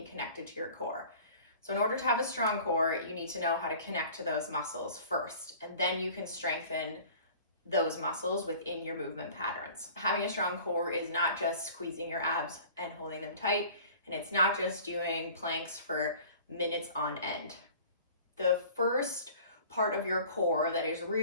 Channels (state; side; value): inverted; both; correlation -0.46